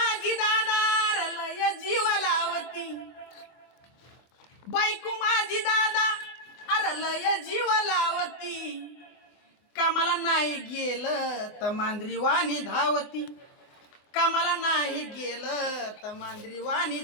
दादार लय जीव लावती, बायको माझी दादा अरे लय जीव लावती, कामाला नाही गेलं तर मांजरी वाणी धावती, कामाला नाही गेलं तर मांजरी वाणी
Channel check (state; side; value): late; right; 24 ms